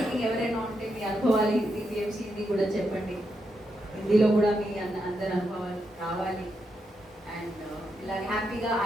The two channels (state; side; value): normal; both; correlation 0.83